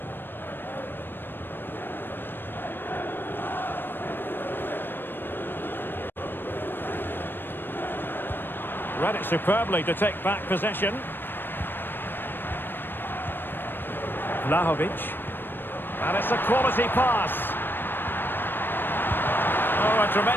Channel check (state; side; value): late; right; 0.096 ms